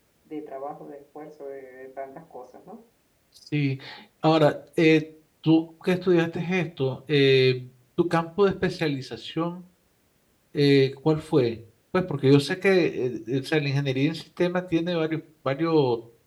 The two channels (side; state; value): both; identical; correlation 1.00